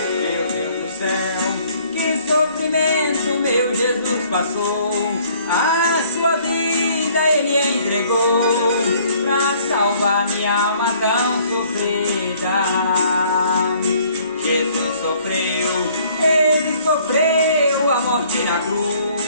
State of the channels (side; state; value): both; inverted; correlation -0.59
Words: Meu Deus do céu, que sofrimento meu Jesus passou. A sua vida Ele entregou pra salvar minha alma tão sofrida. Jesus sofreu, Ele sofreu a morte na